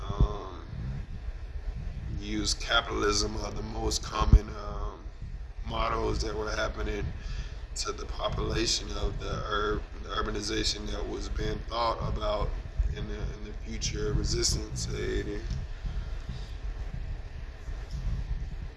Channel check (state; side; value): identical; both; correlation 1.00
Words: Um, Use capitalism are the most common mottos that were happening to the population of the urbanization that was being thought about in the future resistance aid,